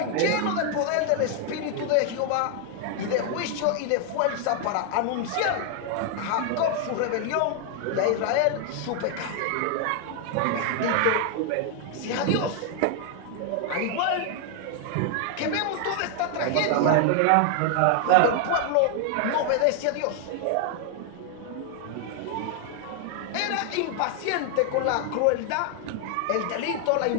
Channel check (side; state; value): both; different; correlation 0.00